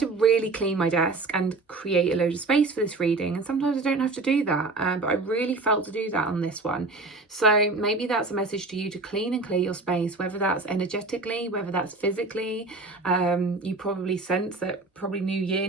to really clean my desk and create a load of space for this reading. And sometimes I don't have to do that, but I really felt to do that on this one. So maybe that's a message to you to clean and clear your space, whether that's energetically, whether that's physically. You probably sense that probably new year,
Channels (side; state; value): left; quieter; 3.4 dB